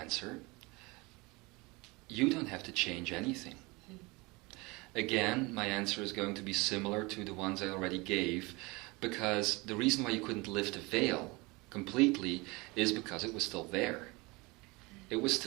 You don't have to change anything. Again, my answer is going to be similar to the ones I already gave, because the reason why you couldn't lift the veil completely is because it was still there. It was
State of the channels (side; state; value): left; quieter; 24.9 dB